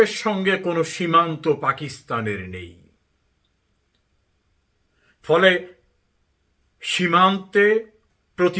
সঙ্গে কোনো সীমান্ত পাকিস্তানের নেই। ফলে সীমান্তে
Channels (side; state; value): both; identical; correlation 1.00